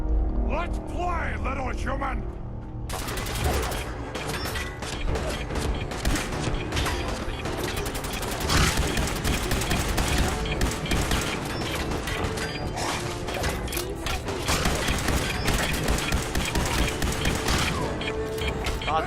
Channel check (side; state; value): both; identical; correlation 1.00